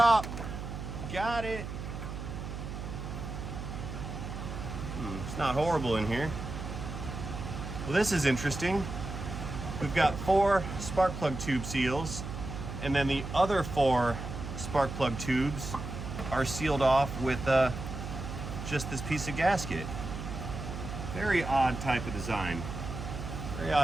Got it. It's not horrible in here. Well, this is interesting. We've got 4 spark plug tube seals, and then the other 4 spark plug tubes are sealed off with just this piece of gasket. Very odd type of design. Very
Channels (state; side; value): noise; right; hum, 7 dB below the sound